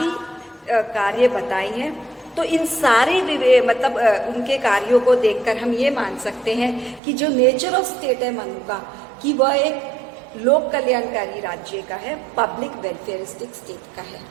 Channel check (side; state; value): left; drops out; at 7.0 s